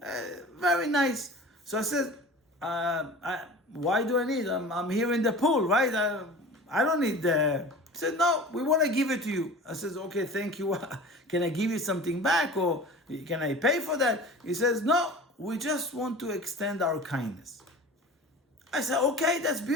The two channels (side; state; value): both; normal; correlation 0.38